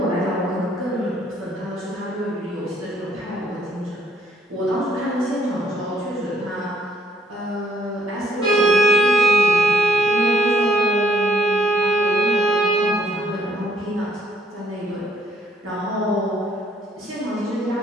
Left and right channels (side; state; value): both; normal; correlation 0.67